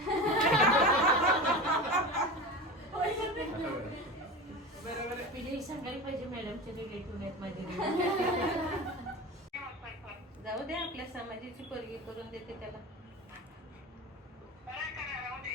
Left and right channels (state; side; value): normal; both; correlation 0.29